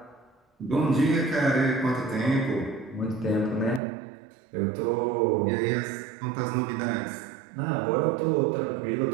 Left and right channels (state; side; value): drops out; left; at 3.8 s